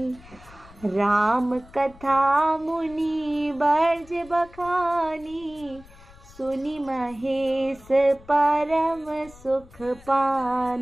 राम कथा मुनि बर्ज बखानी, सुनि महेश परम सुख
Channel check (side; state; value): left; noise; rumble, 22 dB below the sound